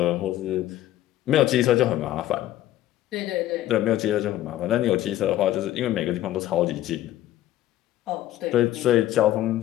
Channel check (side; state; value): right; quieter; 13.7 dB